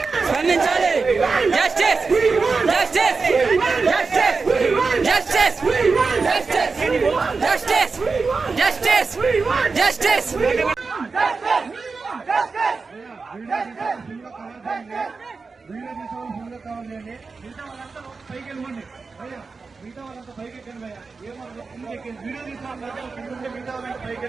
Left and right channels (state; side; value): quieter; left; 4.4 dB